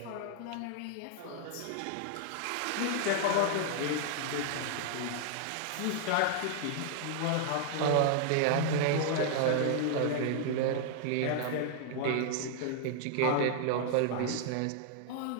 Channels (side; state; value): both; different; correlation 0.00